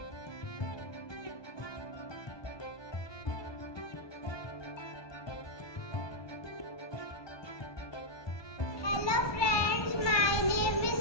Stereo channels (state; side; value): late; right; 1.2 ms